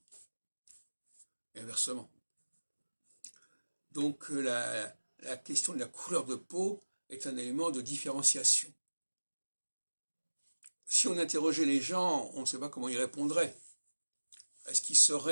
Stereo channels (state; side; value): inverted; both; correlation -1.00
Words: Et inversement. Donc la question de la couleur de peau est un élément de différenciation. Si on interrogeait les gens, on ne sait pas comment ils répondraient. Est-ce qu'ils